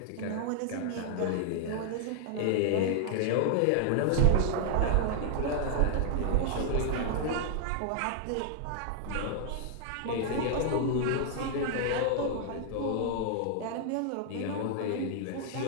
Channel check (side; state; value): both; different; correlation 0.00